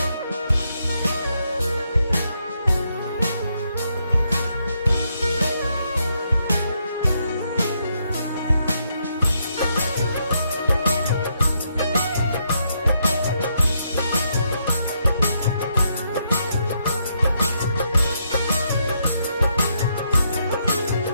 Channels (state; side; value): inverted; both; correlation -0.77